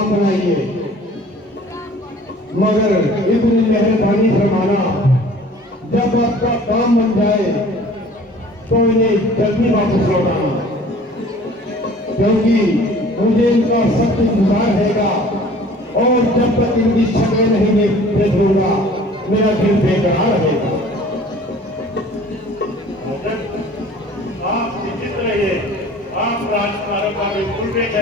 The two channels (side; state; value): both; normal; correlation 0.49